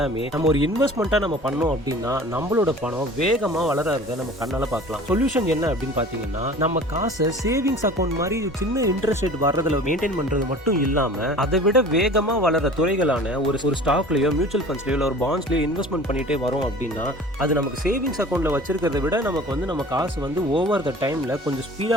நம்ம ஒரு இன்வெஸ்ட்மெண்ட்டாக நம்ம பண்ணோம் அப்படின்னா நம்மளோட பணம் வேகமாக வளர்றத நம்ம கண்ணால் பார்க்கலாம். சொல்யூஷன் என்ன அப்படின்னு பார்த்தீங்கன்னா, நம்ம காசை சேவிங்ஸ் அக்கௌண்ட் மாதிரி சின்ன இன்ட்ரெஸ்ட் ரேட் வர்றதுல மெயின்டைன் பண்றது மட்டும் இல்லாம அதை விட வேகமா வளர துறைகளான ஒரு ஸ்டாக்லயோ மியூச்சுவல் ஃபண்ட்ஸ்லயோ ஒரு பாண்ட்ஸ்லயோ இன்வெஸ்ட்மெண்ட் பண்ணிட்டே வரோம் அப்படின்னா அது நமக்கு சேவிங்ஸ் அக்கௌண்ட்ல வச்சிருக்கிறத விட நமக்கு நம்ம காசு ஓவர் த டைம்ல கொஞ்சம்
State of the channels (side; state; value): both; normal; correlation 0.43